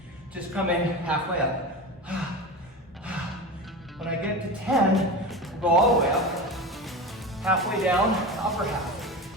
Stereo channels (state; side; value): normal; both; correlation 0.26